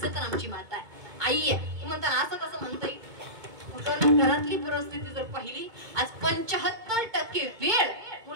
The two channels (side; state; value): left; late; 2.2 ms